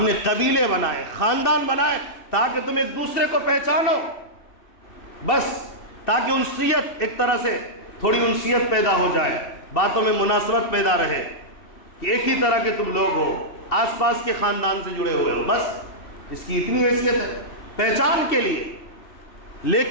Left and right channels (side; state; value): right; late; 2.6 ms